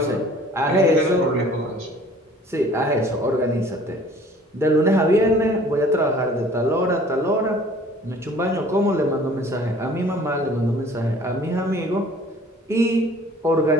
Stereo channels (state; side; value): normal; both; correlation 0.52